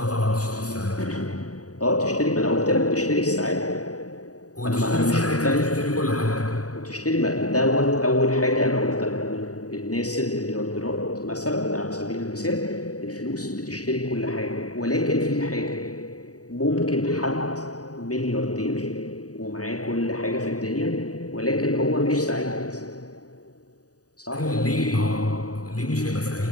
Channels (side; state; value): right; late; 0.67 ms